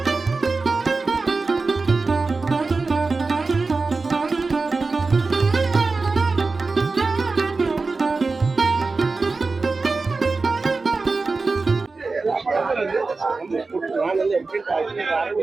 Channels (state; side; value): quieter; left; 3.9 dB